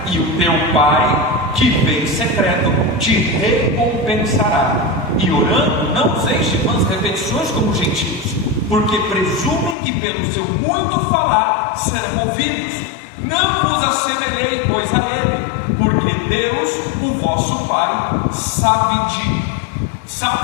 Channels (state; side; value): drops out; right; at 9.8 s